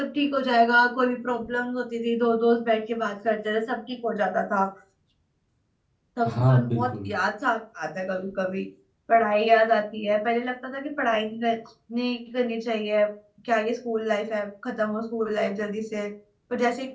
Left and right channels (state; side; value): identical; both; correlation 1.00